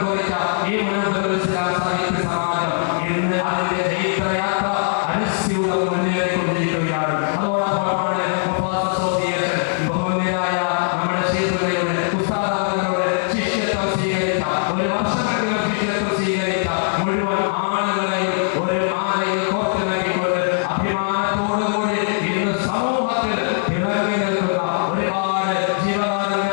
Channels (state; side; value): silent; right; digital silence